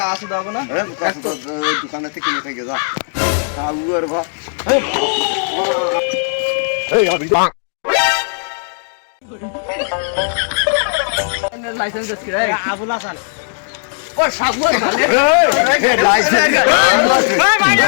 শুধু হবে না দোকানে থেকে কিনে থেকে যা আবু আর ভা লাইসেন্স আছে রে আবুল হাসান ও সাবু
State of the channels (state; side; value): silent; right; digital silence